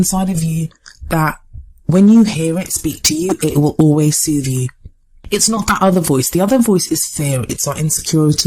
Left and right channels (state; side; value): identical; both; correlation 1.00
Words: of you that when you hear it speak to you, it will always soothe you. It's not that other voice. The other voice is fear. It's our